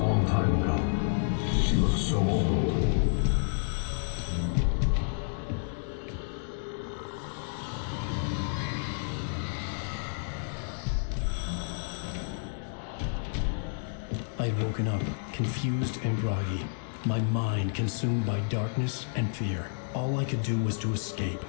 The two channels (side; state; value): right; silent; digital silence